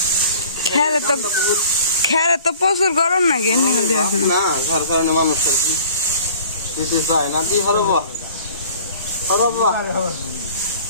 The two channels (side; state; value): both; inverted; correlation -0.48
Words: খেরে তো প্রচুর গরম নাকি না, যার কারণে মানুষ আর কি দিতে চায় না। দি হরব